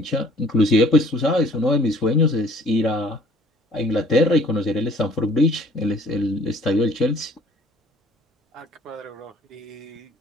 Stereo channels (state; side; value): normal; both; correlation 0.55